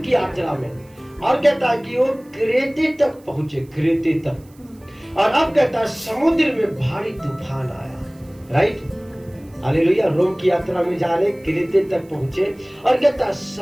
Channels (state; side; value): noise; right; hiss, 30 dB below the sound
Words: की यात्रा में। और कहता है कि वो क्रेते तक पहुंचे, क्रेते तक। और अब कहता है समुद्र में भारी तूफान आया। Right, hallelujah. रोम की यात्रा में जा रहे, क्रेते तक पहुंचे, और कहता है